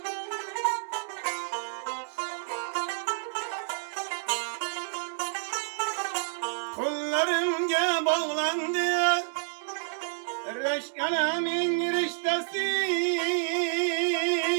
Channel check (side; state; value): left; silent; digital silence